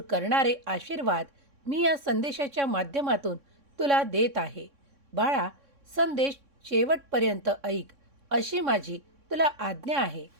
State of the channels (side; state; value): left; late; 3.6 ms